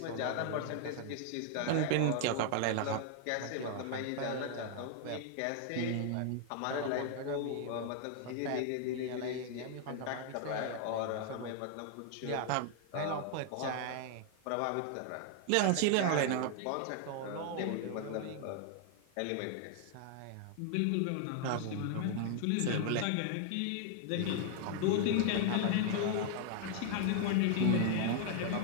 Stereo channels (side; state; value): both; different; correlation 0.00